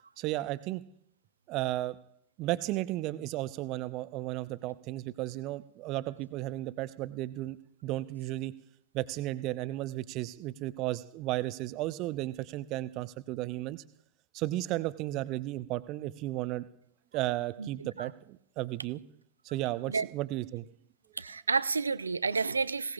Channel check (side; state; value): left; quieter; 10.3 dB